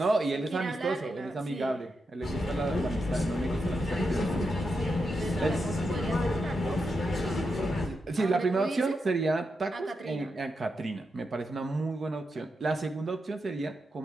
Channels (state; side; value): normal; both; correlation 0.86